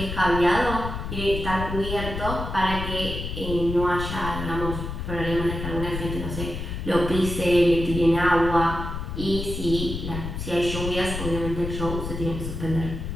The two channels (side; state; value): left; noise; rumble, 5 dB below the sound